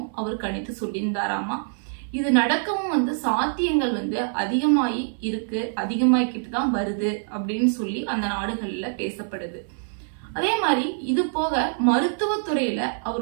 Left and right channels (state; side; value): silent; left; 62 dB below the other